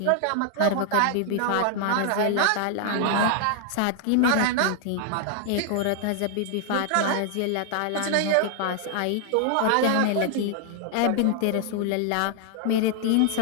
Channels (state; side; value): different; both; correlation 0.00